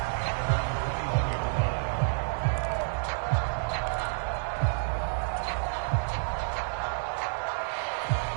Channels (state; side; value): silent; left; digital silence